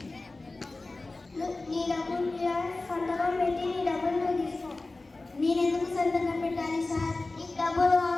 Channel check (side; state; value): right; quieter; 3.3 dB